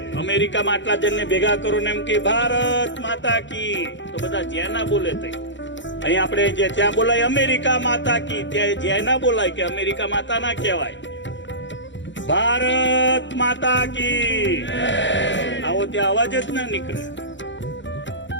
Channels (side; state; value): right; late; 0.54 ms